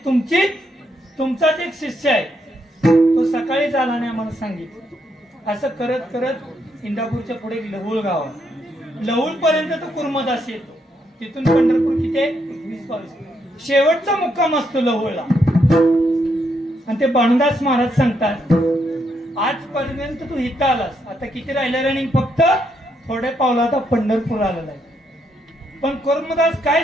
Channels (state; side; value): normal; both; correlation 0.77